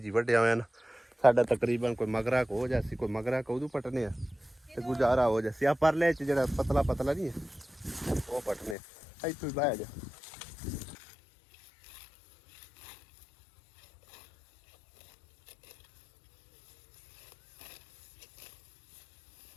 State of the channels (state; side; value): drops out; right; at 8.8 s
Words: ਵੱਢਿਆ ਹੋਇਆ ਨਾ ਸਾਡਾ ਤਕਰੀਬਨ ਕੋਈ ਮਗਰਾ ਕੋ ਹੋ ਜਾਸੀ ਕੋਈ ਮਗਰਾ ਕੋ ਉਦੋਂ ਪਟਨੇ ਆ ਤੇ ਗੁਜ਼ਾਰਾ ਹੋ ਜਾਸੀ ਆ ਪਰਲੇ ਚ ਜਿਹੜਾ ਪਤਲਾ ਨਹੀਂ ਹੈ ਉਹ ਪਟਨੇ ਇੱਥੋਂ ਹੀ ਬਹਿ ਜਾ